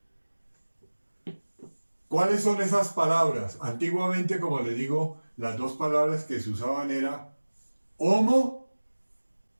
¿Cuáles son esas palabras? Antiguamente, como les digo, las 2 palabras que se usaban era homo,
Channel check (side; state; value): both; inverted; correlation -1.00